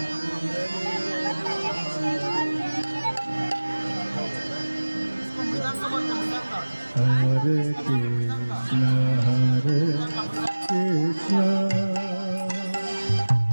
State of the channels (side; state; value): both; inverted; correlation -1.00